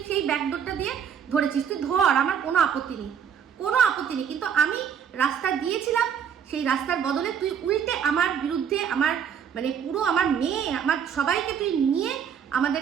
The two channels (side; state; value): left; quieter; 8.0 dB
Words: সেই ব্যাকডোরটা দিয়ে ধরেছিস, তুই ধর, আমার কোনো আপত্তি নেই, কোনো আপত্তি নেই। কিন্তু আমি রাস্তা দিয়েছিলাম, সেই রাস্তার বদলে তুই উল্টে আমার বিরুদ্ধে আমার মানে পুরো আমার মেয়ে আমার সবাইকে তুই নিয়ে